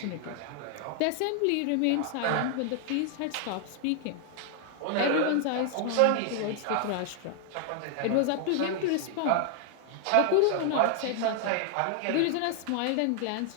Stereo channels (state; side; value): different; both; correlation 0.00